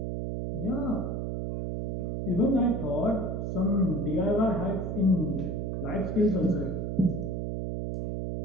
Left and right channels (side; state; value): right; noise; hum, 2 dB below the sound